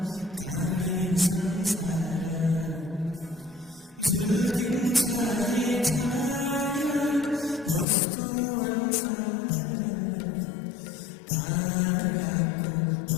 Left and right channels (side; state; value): right; drops out; at 7.9 s